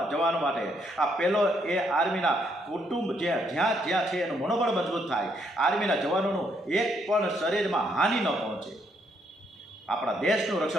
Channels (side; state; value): both; normal; correlation 0.73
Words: માટે. આ પહેલો એ આર્મીના કુટુંબ જ્યાં છે એનું મનોબળ મજબૂત થાય, આર્મીના જવાનોનું એક પણ શરીરમાં હાનિ ન પહોંચે, આપણા દેશનું